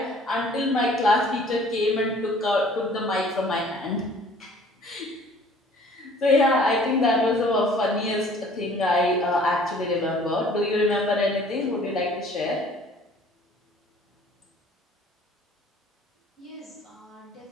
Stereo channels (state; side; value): normal; both; correlation 0.53